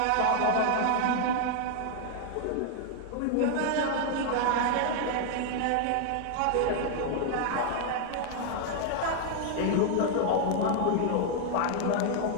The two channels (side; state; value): both; different; correlation 0.00